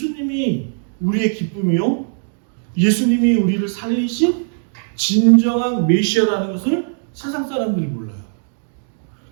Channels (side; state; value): left; silent; digital silence